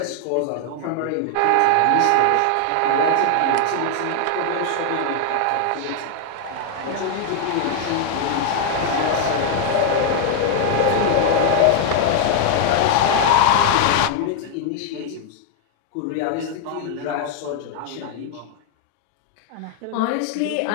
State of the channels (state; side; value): different; both; correlation 0.00